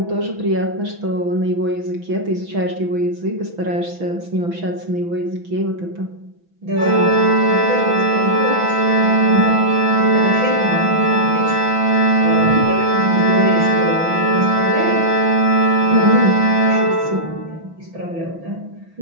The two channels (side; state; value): left; late; 6.0 ms